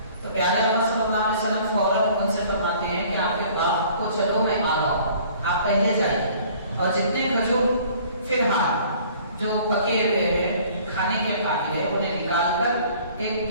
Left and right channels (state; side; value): inverted; both; correlation -0.53